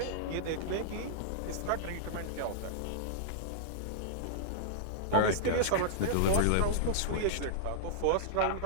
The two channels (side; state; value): both; different; correlation -0.02